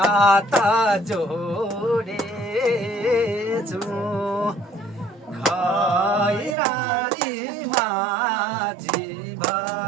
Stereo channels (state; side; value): drops out; left; at 6.6 s